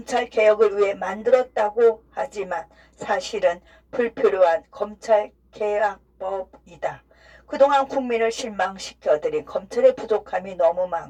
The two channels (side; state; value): both; identical; correlation 1.00